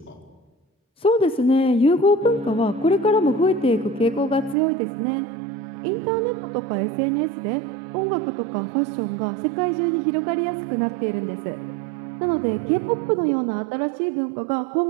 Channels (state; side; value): drops out; left; at 4.5 s